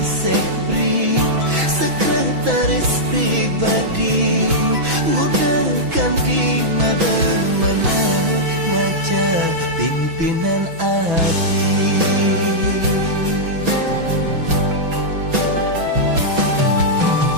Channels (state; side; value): late; left; 6.1 ms